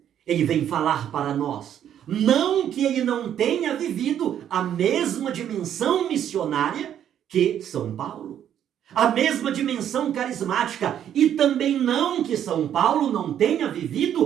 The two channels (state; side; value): quieter; left; 10.0 dB